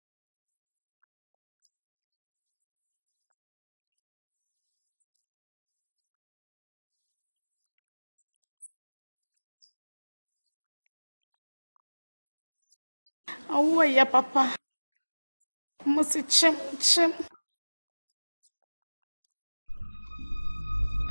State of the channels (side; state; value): both; inverted; correlation -1.00